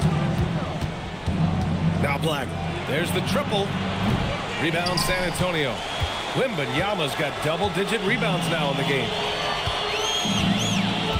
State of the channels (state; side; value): identical; both; correlation 1.00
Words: Now Black. There's the triple. Rebound San Antonio. Wembanyama's got double-digit rebounds now in the game.